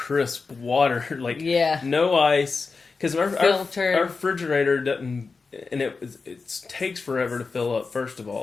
water. No ice. Because our refrigerator doesn't, and it takes forever to fill up. First of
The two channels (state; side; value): quieter; right; 4.5 dB